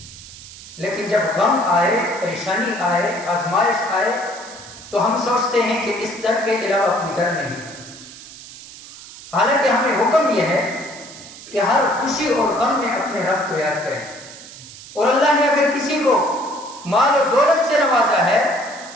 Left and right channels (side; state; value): right; noise; hiss, 16 dB below the sound